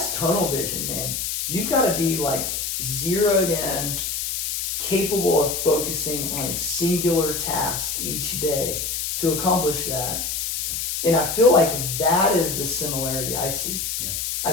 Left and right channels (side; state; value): left; noise; hiss, 2 dB below the sound